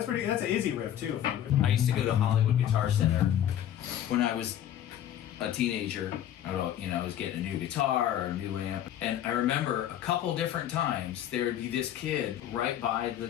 an easy riff too. I used to go to Hollywood Guitar Center when I was a teenager. I was getting a new guitar or a new amp. And I remember a couple different times there'd be this kid right by the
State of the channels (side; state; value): right; quieter; 10.9 dB